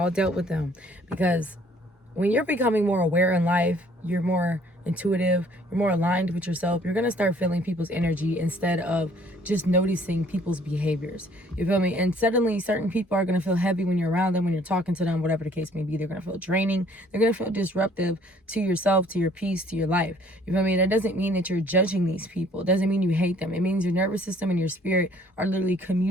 dealt with them because when you're becoming more aware in life, you're more intuitive, you're more aligned with yourself, you're going to start feeling people's energy instead of just noticing people's behaviors. You feel me? And suddenly certain people are going to feel heavy when you're around them, when you're talking to them, whatever the case may be. They're going to feel draining. They're going to feel disruptive to yourself, to your peace, to your life. You feel me? That doesn't mean that you're judging these people. It doesn't mean you hate them. It means your nervous system and your spirit are literally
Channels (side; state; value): both; normal; correlation 0.59